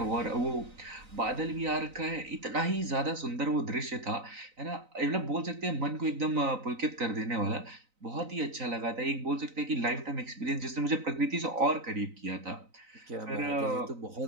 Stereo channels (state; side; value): late; left; 3.9 ms